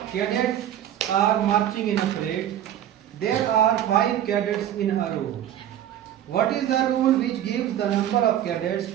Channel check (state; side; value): quieter; left; 11.1 dB